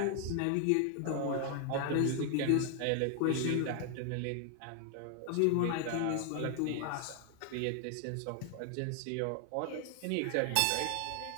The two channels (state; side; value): different; both; correlation 0.00